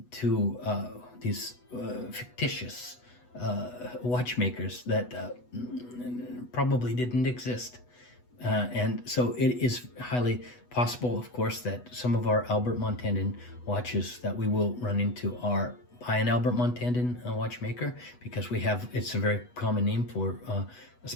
to these fictitious watchmakers that probably didn't exist. And so it is highly possible, of course, that some of our Albert Montandon watches that we will run into are by an Albert Montandon watchmaker, because it's a very common name for,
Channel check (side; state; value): right; late; 8.1 ms